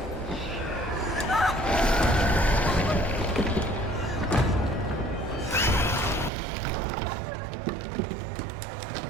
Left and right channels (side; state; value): left; drops out; at 6.3 s